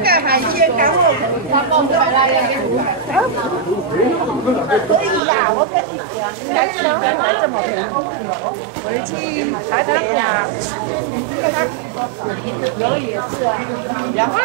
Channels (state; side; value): drops out; left; at 5.2 s